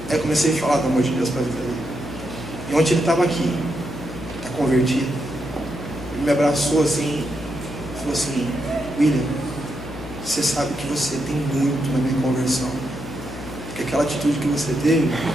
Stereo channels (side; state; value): left; noise; hum, 11 dB below the sound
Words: Aí eu comecei a falar do amor de Deus para a vida dele. E ontem ele estava aqui, está convertido. Ele me abraçou assim, falou assim: William, você sabe que você tem muito na minha conversão, porque aquela atitude que você teve